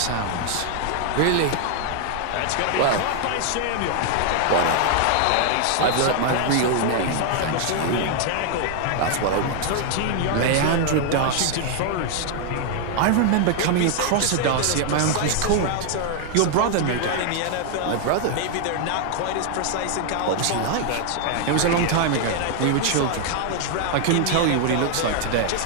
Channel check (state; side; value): different; both; correlation 0.00